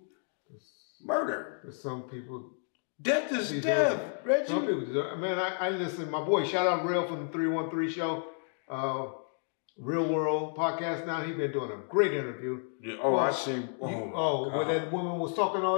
murder? Some people. Death is death, Reggie. Some people deserve. Man, I listen. My boy, shout out Real from the 313 show. Real World podcast now. He's been doing a great interview. Yeah. Oh, I see. Where that woman was talking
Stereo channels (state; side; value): silent; right; 57 dB below the other